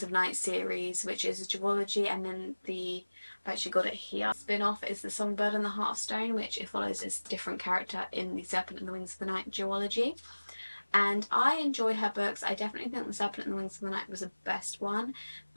of Night series, which is a duology, and then I've actually got it here, spin-off is The Songbird and the Heart of Stone, which it follows a different character in the Serpent and the Wings of the Night duology. And I enjoy her books. I definitely think The Serpent and the Wings of the Night was the best one.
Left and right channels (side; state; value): both; inverted; correlation -1.00